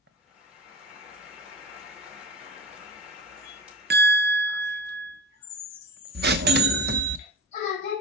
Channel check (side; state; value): both; normal; correlation 0.31